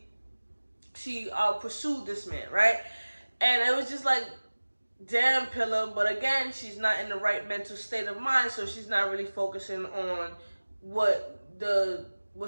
pursued this man, right? And it was just like, damn, Pilar. But again, she's not in the right mental state of mind, so she's not really focusing on what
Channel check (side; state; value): both; inverted; correlation -1.00